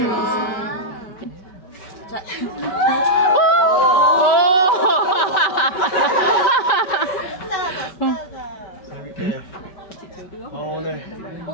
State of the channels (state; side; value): late; right; 5.2 ms